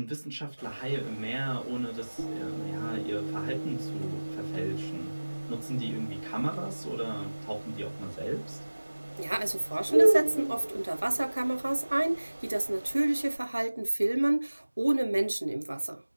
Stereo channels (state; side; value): inverted; both; correlation -1.00